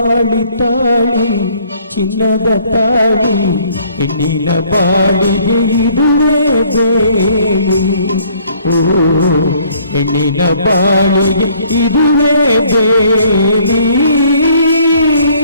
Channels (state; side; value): inverted; both; correlation -0.60